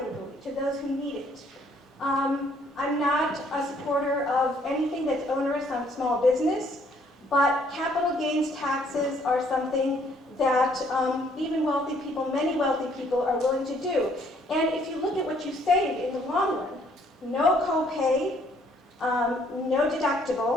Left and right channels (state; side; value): normal; both; correlation 0.64